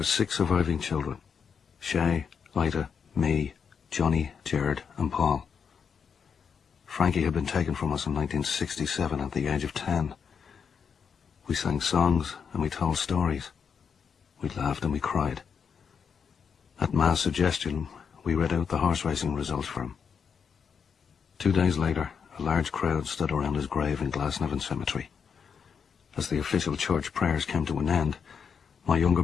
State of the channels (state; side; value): quieter; right; 6.6 dB